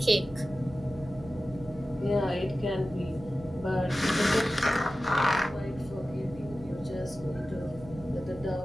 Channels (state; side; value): noise; right; hum, 18 dB below the sound